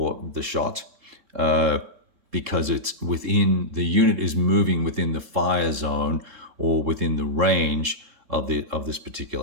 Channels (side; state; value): left; late; 3.7 ms